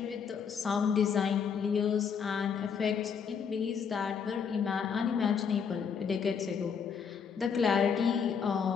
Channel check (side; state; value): right; quieter; 6.6 dB